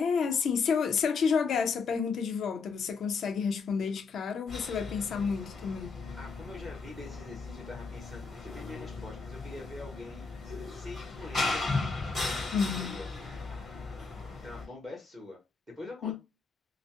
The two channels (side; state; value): right; quieter; 5.0 dB